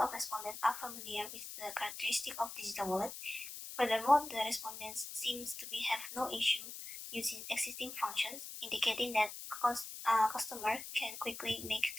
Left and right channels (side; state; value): left; noise; hiss, 9 dB below the sound